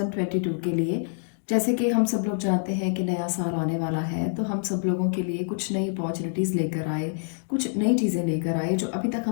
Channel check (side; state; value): right; silent; digital silence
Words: के लिए। जैसे कि हम सब लोग जानते हैं कि नया साल आने वाला है, तो हम सब लोगों के लिए कुछ नई अपॉर्चुनिटीज़ लेकर आए, कुछ नई चीज़ें लेकर आए जो अभी तक